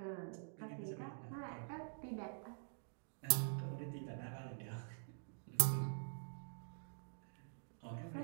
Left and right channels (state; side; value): silent; left; digital silence